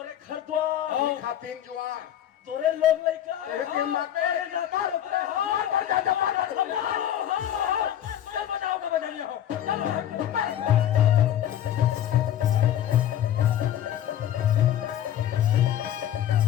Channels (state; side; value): quieter; right; 11.0 dB